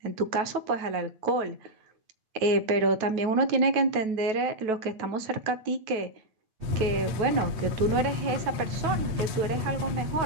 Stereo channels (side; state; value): left; late; 9.3 ms